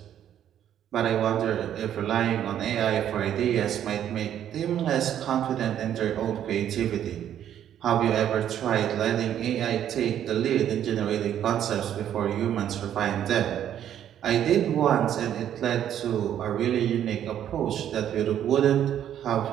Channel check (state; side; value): quieter; left; 10.4 dB